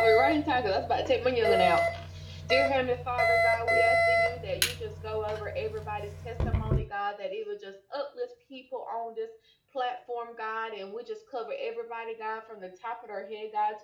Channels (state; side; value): identical; both; correlation 1.00